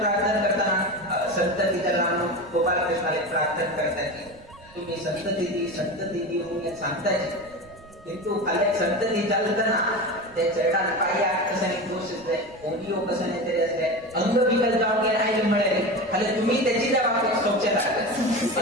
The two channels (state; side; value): noise; right; rumble, 24 dB below the sound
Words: करताना संतती त्याला गोपालकृष्णाला प्रार्थना करताय तुम्ही संतती म्हणून सांगताय किंतु खाली संतती चालताना त्या चरणात पाया कशाने दोष असले ओडिओ कशाने तरी असले अंग विकल जाऊन गेला आहे मिळेल खाली तुम्ही त्याची त्या बाबतीत स्वच्छता